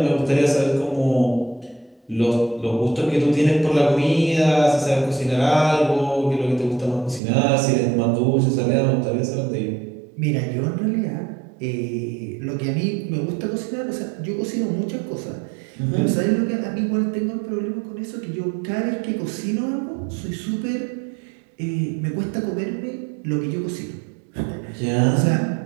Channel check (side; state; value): left; drops out; at 7.2 s